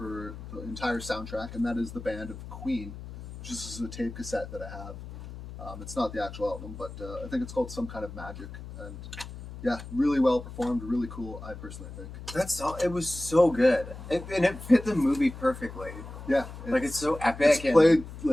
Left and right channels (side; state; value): left; noise; hum, 12 dB below the sound